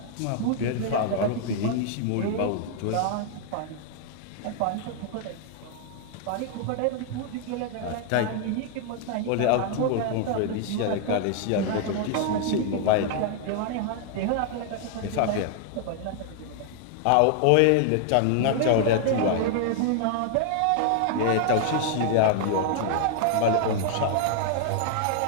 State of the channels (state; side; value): different; both; correlation 0.00